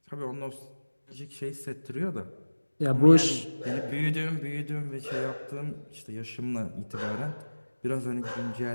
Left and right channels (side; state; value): both; inverted; correlation -1.00